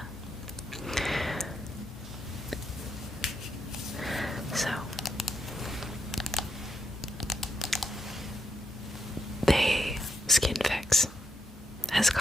So Skin Fix has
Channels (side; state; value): both; normal; correlation 0.82